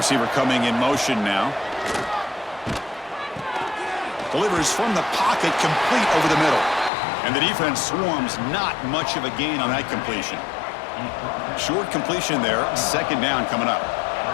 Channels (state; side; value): drops out; right; at 6.9 s